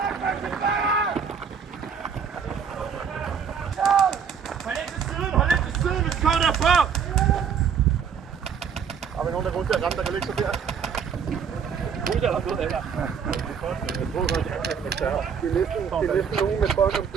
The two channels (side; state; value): left; quieter; 6.9 dB